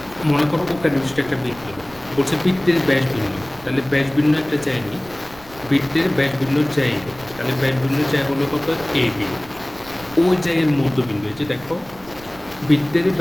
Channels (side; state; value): right; noise; rumble, 21 dB below the sound